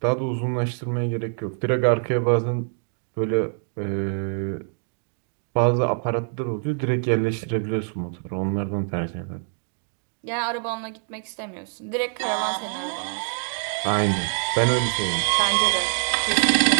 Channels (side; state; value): left; silent; 62 dB below the other